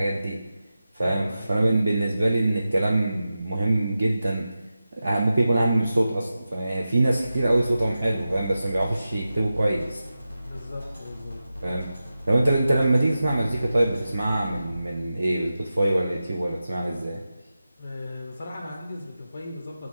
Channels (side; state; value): both; inverted; correlation -0.93